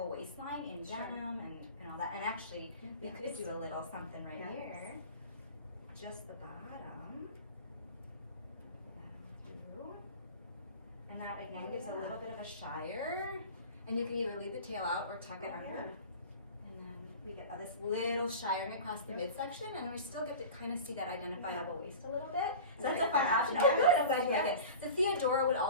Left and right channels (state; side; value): inverted; both; correlation -0.36